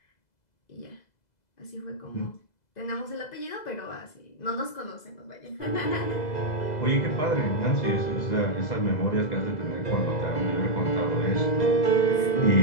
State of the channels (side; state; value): right; late; 2.0 ms